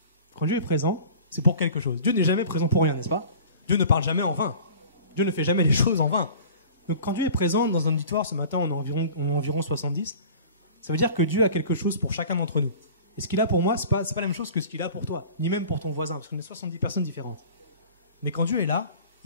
Quand Dieu est présent, c'est pour quelque chose. Dieu n'est jamais présent pour rien, n'est-ce pas? Dieu ne parle jamais en vain. Dieu ne fait jamais les choses en vain. Donc quand Dieu est présent dans un auditoire, ce matin on est environ 70, ça veut dire que Dieu a quelque chose pour chacun d'entre nous. Et ce qu'il a pour moi, ce n'est pas la même chose que ce qu'il a pour toi, ni même pour ton voisin, parce qu'on est 70 personnes différentes. Mais quand Dieu est là,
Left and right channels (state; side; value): inverted; both; correlation -0.43